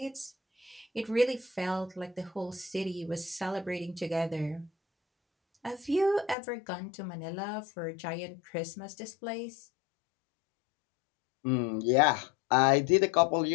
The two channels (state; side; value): drops out; right; at 6.4 s